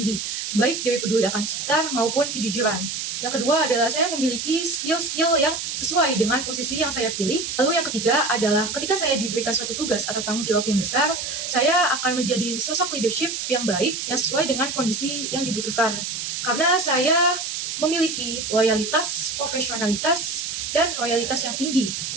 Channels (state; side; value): noise; right; hiss, 4 dB below the sound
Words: baik dari peduli akan sekitar maupun kejujuran. Yang kedua adalah saya memiliki skill-skill yang sesuai dengan posisi yang saya pilih. Lalu yang ketiga adalah ketika saya diberikan suatu tugas atau tanggung jawab yang besar, saya akan menjadi sosok leadership yang baik yang sesuai dengan kondisi yang dibutuhkan. Karena saya memiliki loyalitas, profesionalitas, dan loyalitas yang tinggi